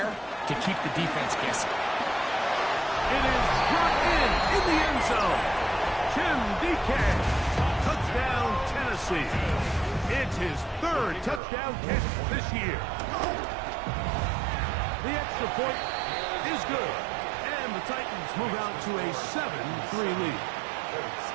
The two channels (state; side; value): drops out; left; at 11.4 s